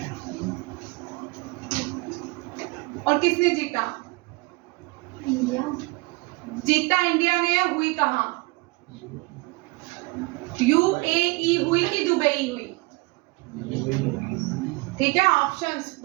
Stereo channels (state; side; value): quieter; left; 25.2 dB